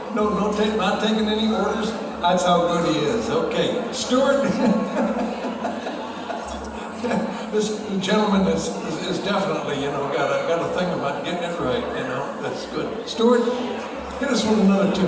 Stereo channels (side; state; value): both; identical; correlation 1.00